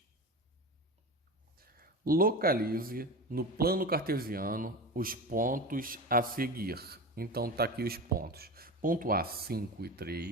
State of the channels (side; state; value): both; normal; correlation 0.26